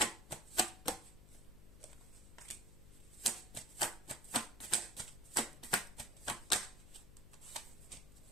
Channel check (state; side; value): noise; left; hum, 18 dB below the sound